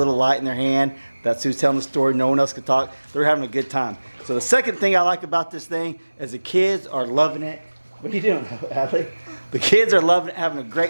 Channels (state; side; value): inverted; both; correlation -1.00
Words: light in their hand, that's who's telling the story. No one else can talk. They're having a good time. So the second thing I like about this thing is the kids are loving it. What are you doing, Adley? The kids are loving it, having a